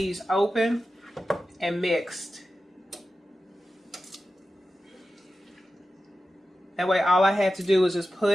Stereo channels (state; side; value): normal; both; correlation 0.93